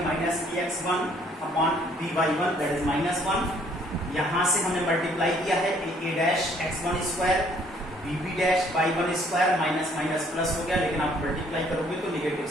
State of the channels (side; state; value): both; normal; correlation 0.62